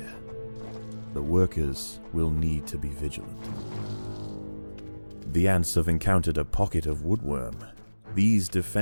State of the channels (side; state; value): both; inverted; correlation -1.00